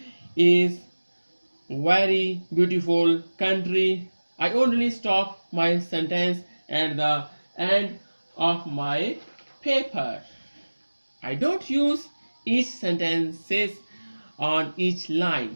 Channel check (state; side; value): inverted; both; correlation -1.00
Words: is very beautiful country. I only stop my sentence at the end of my paper. I don't use each sentences on each